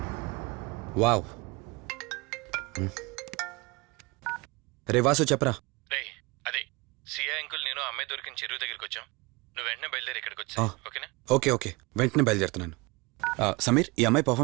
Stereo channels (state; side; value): quieter; left; 25.6 dB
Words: wow. రే వాసు చెప్పరా. రే అదే సిఐ అంకుల్ నేను ఆ అమ్మాయి దొరికిన చెరువు దగ్గరికి వచ్చాం. నువ్వు వెంటనే బయలుదేరి ఇక్కడికి వచ్చా, ఓకేనా? ఓకే వెంటనే బయలుదేరుతున్నాను. సమీర్, ఈ అమ్మాయి